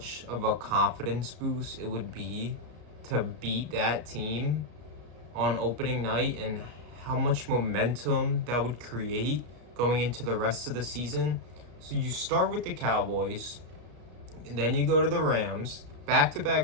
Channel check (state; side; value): late; left; 33 ms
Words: of a confidence boost it would be to beat that team on opening night and how much momentum that would create going into the rest of the season. So you start with the Cowboys, and then you go to the Rams,